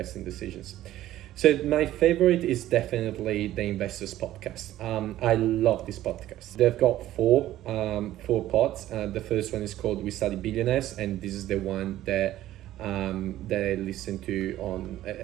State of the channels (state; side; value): quieter; left; 14.0 dB